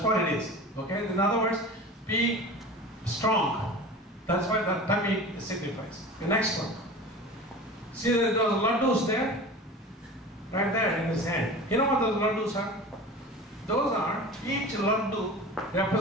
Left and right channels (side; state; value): both; normal; correlation 0.35